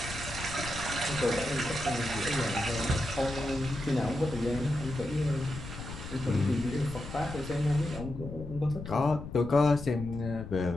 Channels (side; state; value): left; noise; rumble, 10 dB below the sound